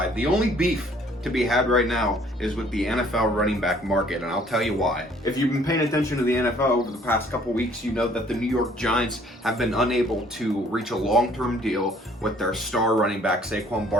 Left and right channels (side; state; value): both; normal; correlation 0.59